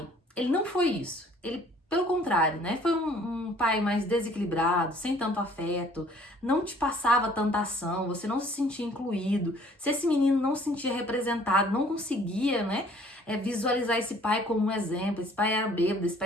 ele não foi isso, ele pelo contrário, né? Foi um pai mais desequilibrado, sem tanto afeto, não te passava tanta ação, você não se sentia incluído. Se esse menino não se sentia representado, não conseguia, né? Visualizar esse pai como um exemplo. Esse pai era bêbado, esse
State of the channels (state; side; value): normal; both; correlation 0.56